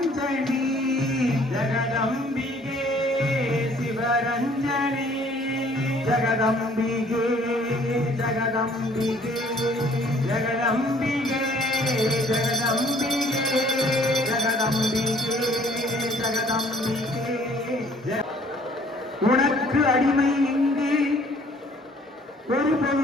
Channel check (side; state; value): both; normal; correlation 0.58